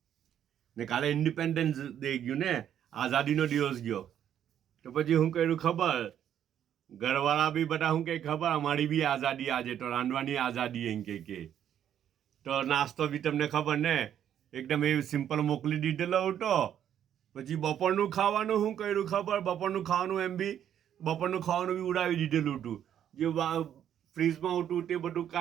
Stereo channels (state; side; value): quieter; left; 9.9 dB